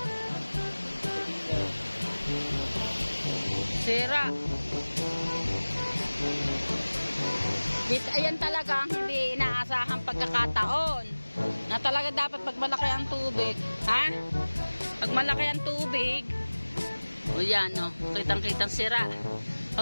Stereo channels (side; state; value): both; inverted; correlation -1.00